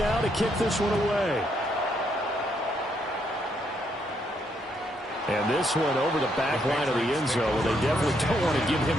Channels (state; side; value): normal; both; correlation 0.75